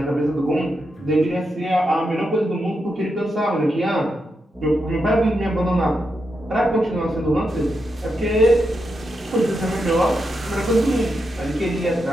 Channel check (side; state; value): both; normal; correlation 0.85